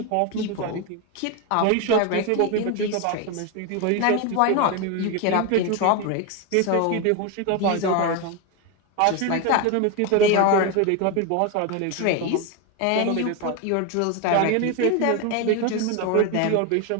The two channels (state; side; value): different; both; correlation 0.02